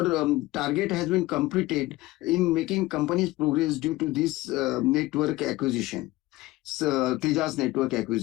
target has been completed in making companies progress due to this network acquisition, Tejas network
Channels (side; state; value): right; quieter; 19.1 dB